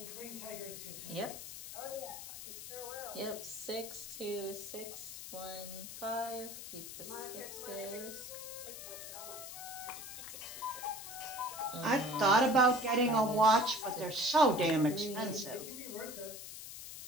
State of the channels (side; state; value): left; noise; hiss, 10 dB below the sound